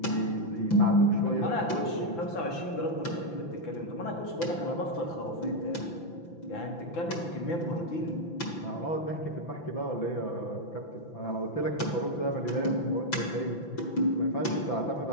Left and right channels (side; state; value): right; late; 5.9 ms